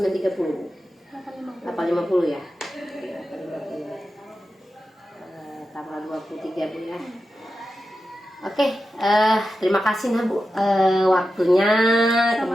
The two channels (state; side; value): normal; both; correlation 0.91